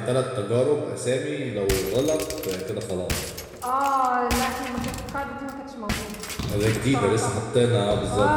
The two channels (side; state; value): both; identical; correlation 1.00